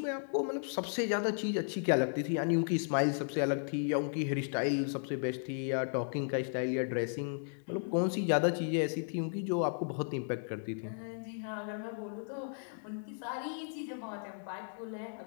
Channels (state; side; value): silent; right; digital silence